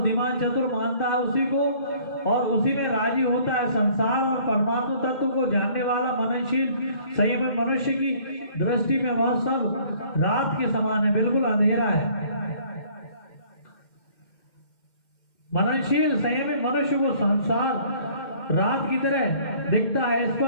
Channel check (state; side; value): late; right; 2.1 ms